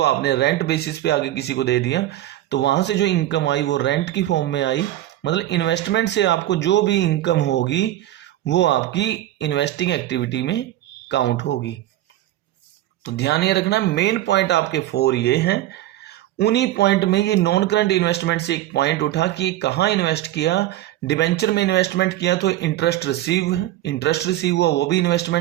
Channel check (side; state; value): left; quieter; 14.3 dB